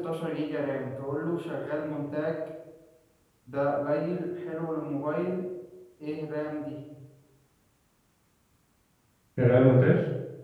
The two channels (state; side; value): identical; both; correlation 1.00